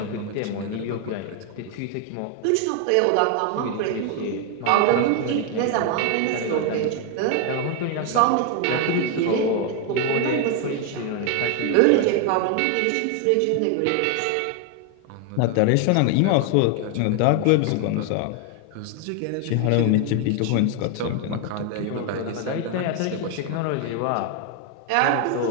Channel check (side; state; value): both; different; correlation 0.01